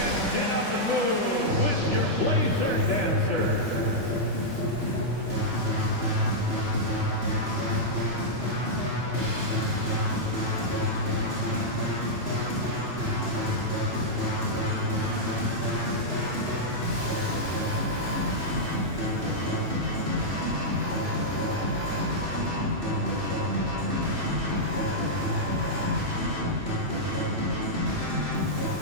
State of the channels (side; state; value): left; late; 3.0 ms